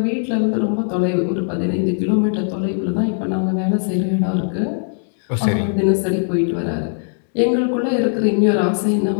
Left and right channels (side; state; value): right; silent; digital silence